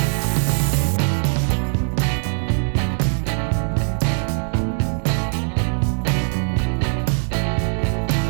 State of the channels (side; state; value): left; silent; 65 dB below the other